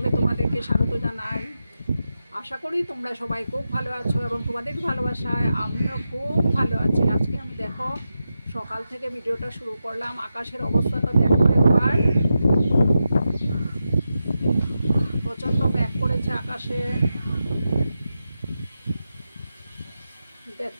তোমাদেরকে স্বাগত জানাই। আশা করি তোমরা সবাই খুব ভালো আছো এবং তোমাদের ভালোবাসায় আমিও খুব ভালো আছি। আজকে আমি দেখো সকাল থেকে ভিডিওটা শুরু করলাম। আকাশের অবস্থাটা দেখো একবার, প্রচণ্ড মেঘ করেছে আকাশে,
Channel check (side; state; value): both; inverted; correlation -0.89